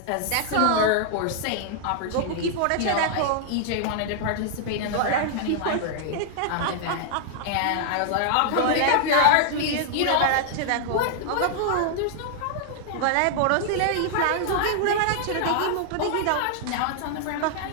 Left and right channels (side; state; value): both; different; correlation -0.01